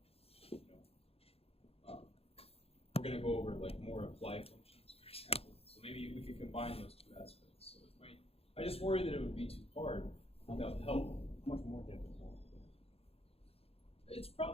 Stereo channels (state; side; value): late; right; 0.29 ms